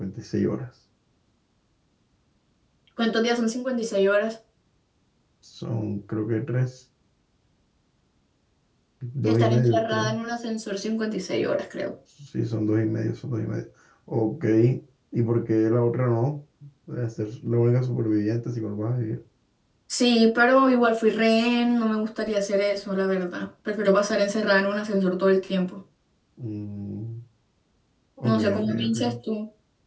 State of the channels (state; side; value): identical; both; correlation 1.00